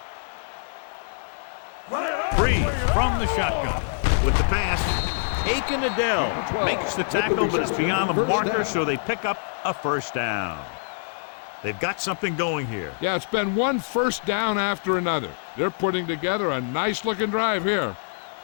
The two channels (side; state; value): right; silent; digital silence